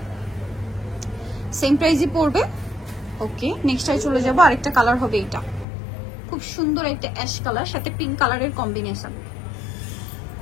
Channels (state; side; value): drops out; right; at 5.7 s